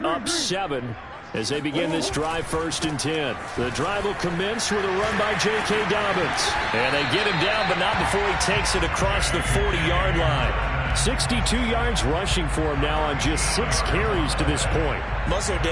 up 7 as they begin this drive, 1st and 10. The drive will commence with a run by J.K. Dobbins. And they get him down, but not before he takes it across the 40-yard line. 62 yards rushing for him now on just 6 carries to this point. Muscle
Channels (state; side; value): identical; both; correlation 1.00